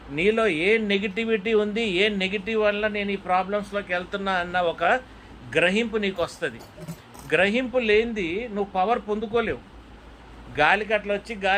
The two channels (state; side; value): identical; both; correlation 1.00